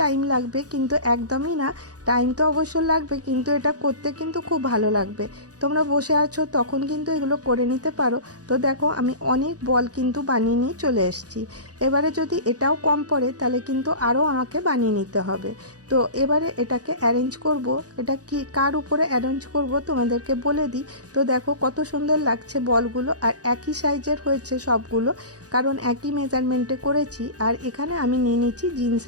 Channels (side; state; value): left; late; 0.67 ms